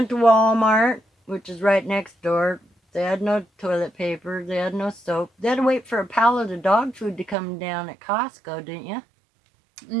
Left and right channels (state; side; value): drops out; left; at 7.4 s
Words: to Walmart, which is right next door. They had no toilet paper, they had no soap. They had to wait for a pallet of dog food to come down at Costco, didn't you?